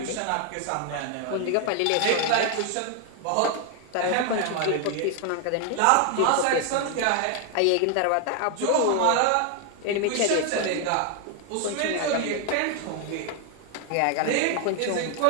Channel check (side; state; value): both; different; correlation 0.00